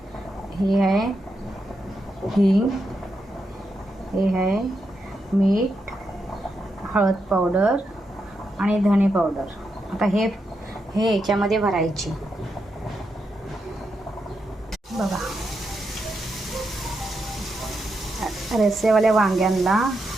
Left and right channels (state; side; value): normal; both; correlation 0.84